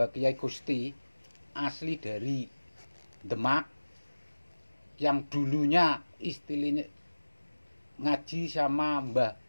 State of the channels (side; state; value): both; inverted; correlation -1.00